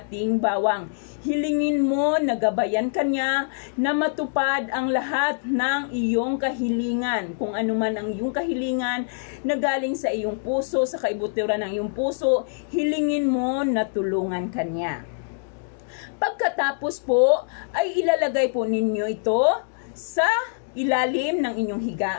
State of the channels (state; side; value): silent; right; digital silence